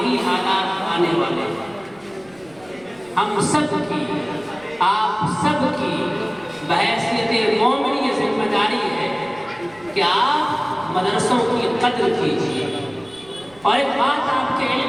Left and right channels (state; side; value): noise; right; rumble, 26 dB below the sound